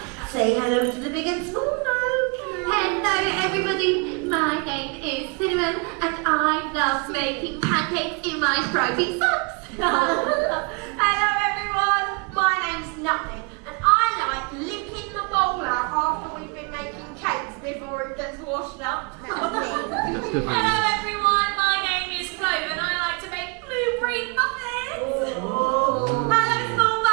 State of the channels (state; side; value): quieter; left; 32.2 dB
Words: Say hello to the big and small folk. Hello everybody, my name is Cinnamon and I love making pancakes in my stripy socks. Hello everyone, my name's Nothing and I like licking the bowl out after we've been making cakes before it gets washed up. Hello everyone, my name is Clove and I like to make blueberry muffins. Hello small